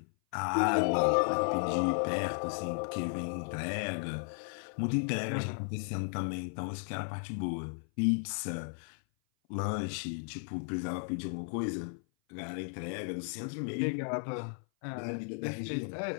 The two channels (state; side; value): silent; right; 55 dB below the other